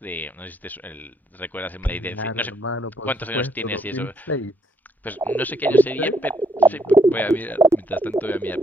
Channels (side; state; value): both; normal; correlation 0.72